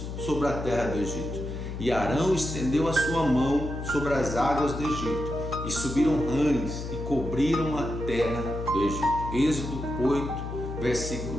sobre a terra do Egito. E Arão estendeu a sua mão sobre as águas do Egito, e subiram rãs, e cobriram a terra do Egito. Êxodo 8,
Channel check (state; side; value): noise; left; hum, 7 dB below the sound